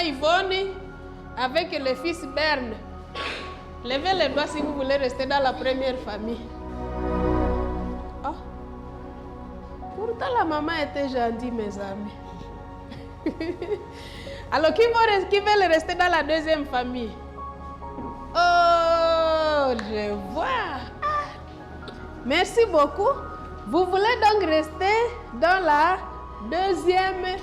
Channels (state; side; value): identical; both; correlation 1.00